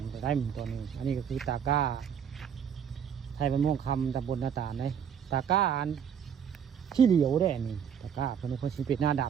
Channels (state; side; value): quieter; left; 8.0 dB